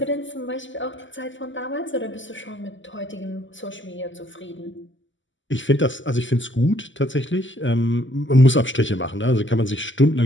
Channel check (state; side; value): late; right; 0.55 ms